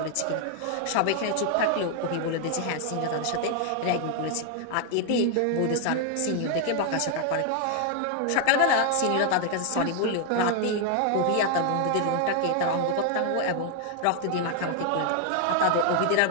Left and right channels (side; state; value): both; different; correlation 0.00